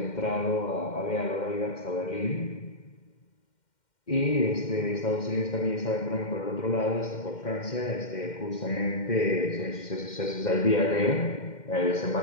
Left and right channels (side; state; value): right; late; 2.1 ms